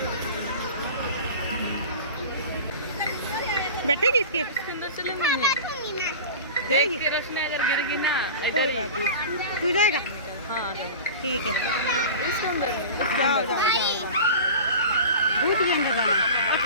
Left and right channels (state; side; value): inverted; both; correlation -0.34